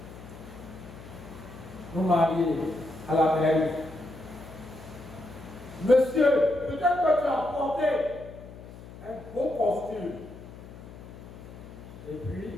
nous marier à la mairie. Monsieur, peut-être que tu as porté un beau costume. Et puis,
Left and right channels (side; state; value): left; noise; hum, 15 dB below the sound